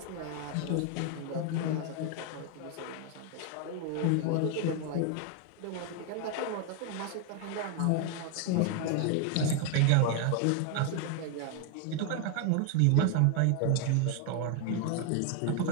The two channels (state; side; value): different; both; correlation 0.01